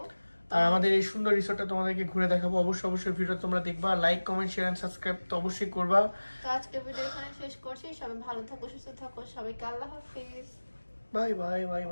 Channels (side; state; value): both; inverted; correlation -1.00